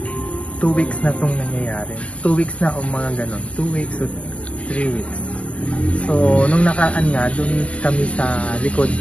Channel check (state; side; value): late; right; 0.063 ms